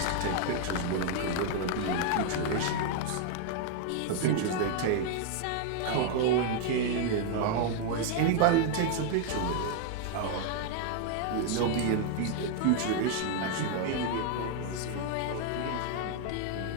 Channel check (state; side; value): different; both; correlation 0.00